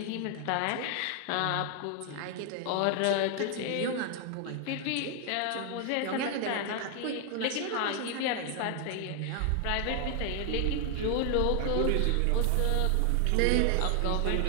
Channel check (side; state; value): both; different; correlation 0.00